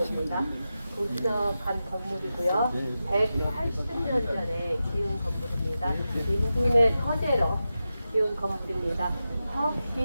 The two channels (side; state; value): both; inverted; correlation -0.92